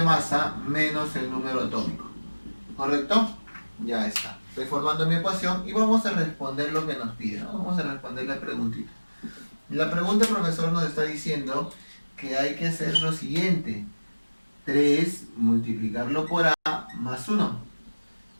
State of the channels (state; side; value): inverted; both; correlation -1.00